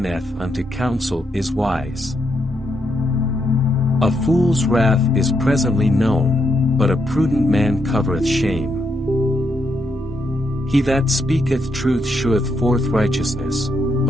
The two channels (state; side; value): normal; both; correlation 0.79